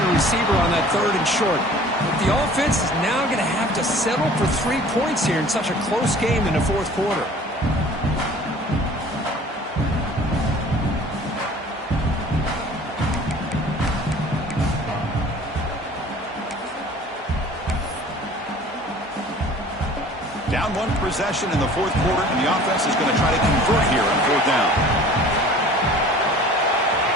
receiver on that third and short. But the offense is now going to have to settle for 3 points here in such a close game in the fourth quarter. Down one possession in the fourth quarter, and the offense is going to try to convert here on fourth down.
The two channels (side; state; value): both; normal; correlation 0.47